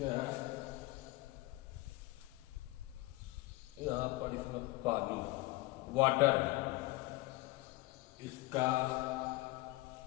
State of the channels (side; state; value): right; quieter; 20.6 dB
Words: यहाँ पर इसमें पानी वाटर, इसका